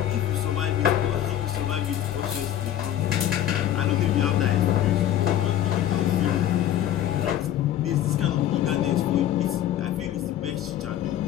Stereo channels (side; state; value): right; quieter; 11.6 dB